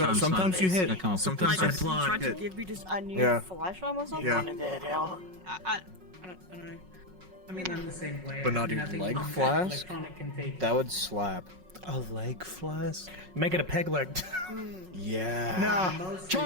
Sometimes you hit. I come up with Sometimes this I stuff. plot. tried to hit. give me just a new Yeah. flash almost something. Yeah. One in that hell. I don't know. I mean, I'm the same way. But not I even think leg electronic flask? can take That would slap. A leg flask? Make it a peg leg. Yeah. Nah, Mostly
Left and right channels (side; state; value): left; late; 5.4 ms